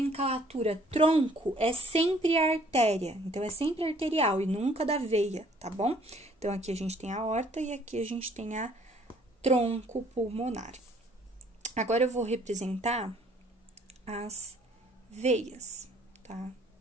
tronco é sempre a artéria, então é sempre arterial e nunca da veia, tá bom? Então, aqui a gente tem a aorta e aqui a gente tem a tronco pulmonar. Agora, eu vou representar as veias, tá?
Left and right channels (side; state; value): both; normal; correlation 0.60